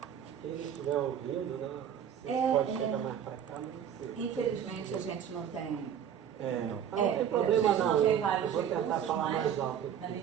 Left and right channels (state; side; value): quieter; left; 9.0 dB